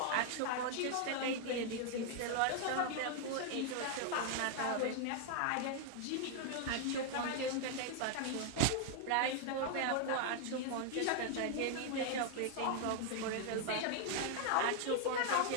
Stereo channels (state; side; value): different; both; correlation 0.00